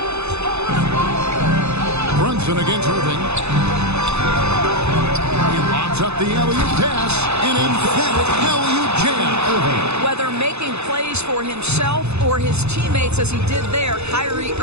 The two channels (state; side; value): late; left; 0.80 ms